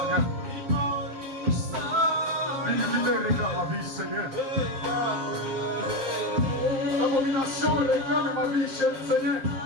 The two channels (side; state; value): left; late; 7.6 ms